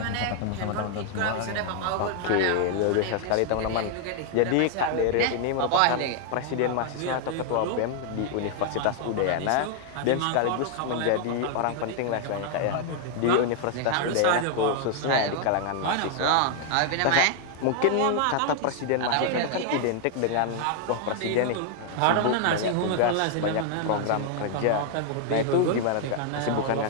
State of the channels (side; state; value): both; different; correlation 0.00